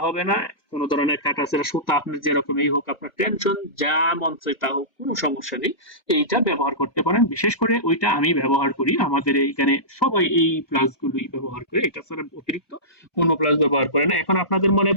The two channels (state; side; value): late; right; 1.2 ms